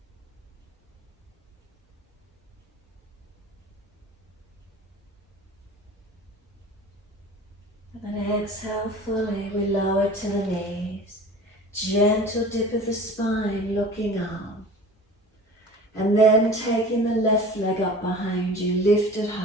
And then exhale fully, we lower to the knees. Gentle dip of the spine, looking up. And then taking the left leg up behind you, lift it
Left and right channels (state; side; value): normal; both; correlation 0.40